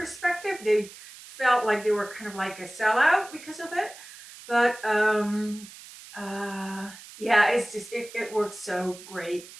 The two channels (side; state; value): right; noise; hiss, 17 dB below the sound